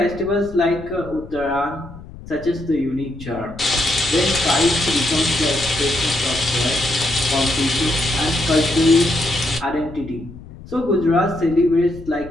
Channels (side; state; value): left; noise; rumble, 16 dB below the sound